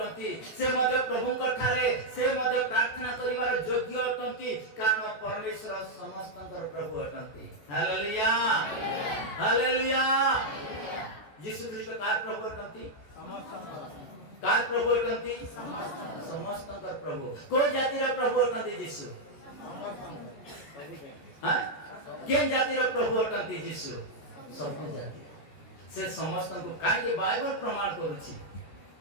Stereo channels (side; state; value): right; late; 14 ms